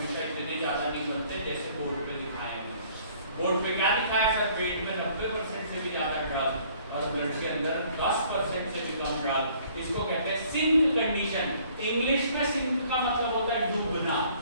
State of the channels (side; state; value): both; inverted; correlation -0.58